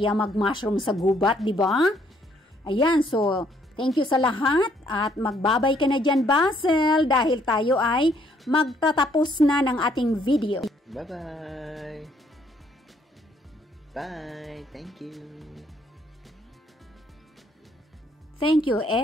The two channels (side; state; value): both; normal; correlation 0.67